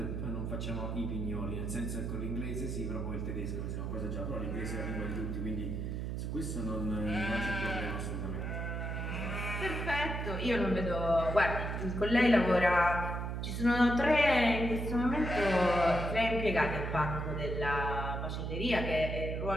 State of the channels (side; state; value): right; noise; hum, 3 dB below the sound